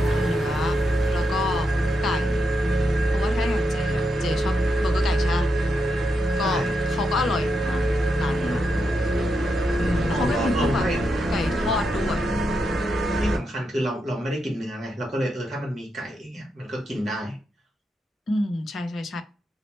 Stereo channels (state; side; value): normal; both; correlation 0.84